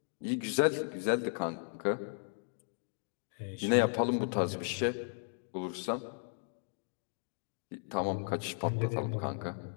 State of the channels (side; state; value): right; silent; 54 dB below the other